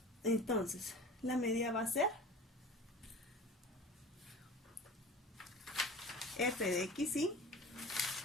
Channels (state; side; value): normal; both; correlation 0.38